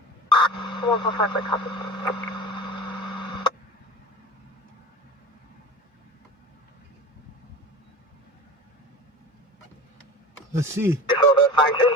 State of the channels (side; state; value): both; normal; correlation 0.33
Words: 145 by copy. Let's see. So that's 19